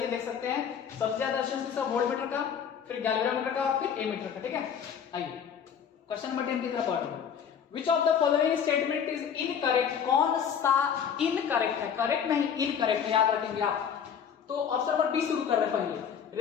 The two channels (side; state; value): right; quieter; 7.8 dB